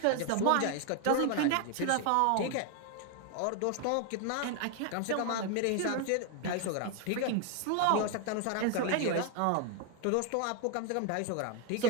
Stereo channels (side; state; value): both; different; correlation 0.01